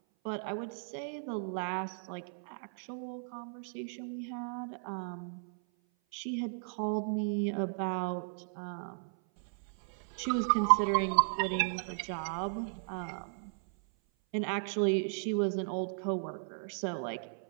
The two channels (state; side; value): silent; left; 54 dB below the other